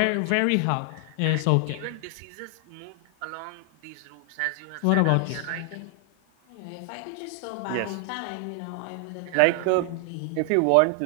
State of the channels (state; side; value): different; both; correlation 0.00